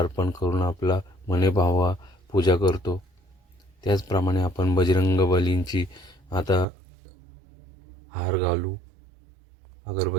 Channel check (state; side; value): drops out; left; at 6.7 s